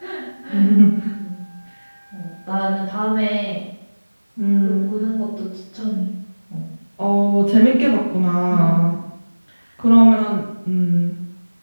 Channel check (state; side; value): inverted; both; correlation -1.00